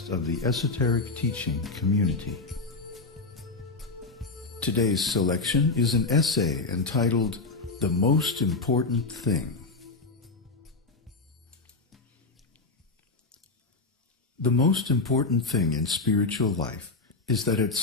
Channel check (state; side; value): quieter; right; 3.7 dB